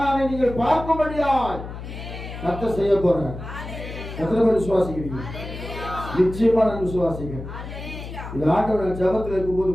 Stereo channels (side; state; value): left; noise; hum, 10 dB below the sound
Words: நீங்கள் பார்க்கும்படியாய் கர்த்தர் செய்ய போறார். எத்தனை பேர் விசுவாசிக்கிறீங்க? நிச்சயமா நான் விசுவாசிக்கிறேன். இது ஆண்டவர் ஜபத்தில் இருக்கும்போது